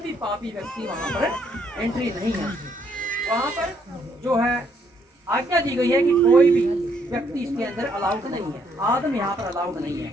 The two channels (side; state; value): both; normal; correlation 0.70